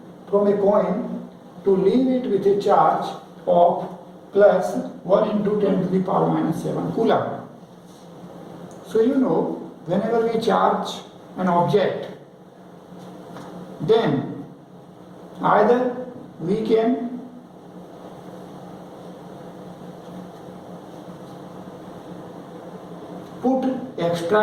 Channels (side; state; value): both; identical; correlation 1.00